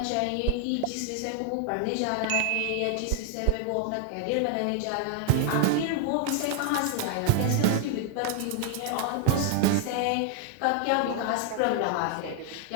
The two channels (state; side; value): different; both; correlation 0.00